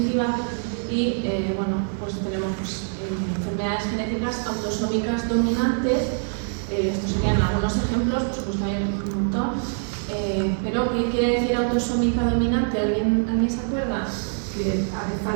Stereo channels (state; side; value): silent; left; 62 dB below the other